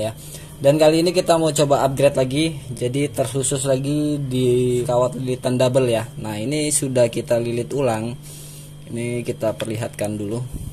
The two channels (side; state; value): both; identical; correlation 1.00